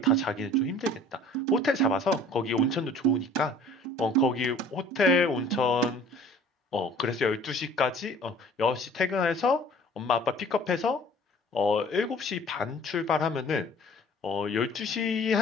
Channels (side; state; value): both; normal; correlation 0.49